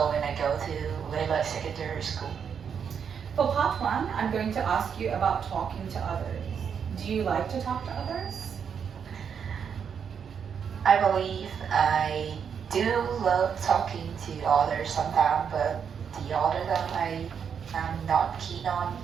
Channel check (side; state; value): left; quieter; 7.2 dB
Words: and I go to Layla Secondary School. For part one, I'm going to ask you about talking to others. Do you like to talk to others? I believe I do love talking to others sometimes, but the other time I'm not keen on